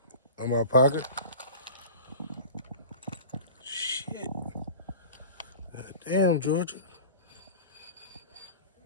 On my pocket? Shit. God damn, Georgia.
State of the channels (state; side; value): inverted; both; correlation -0.36